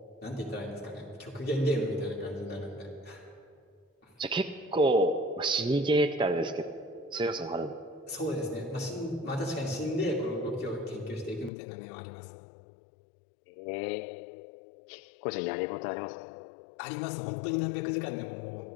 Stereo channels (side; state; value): right; drops out; at 11.5 s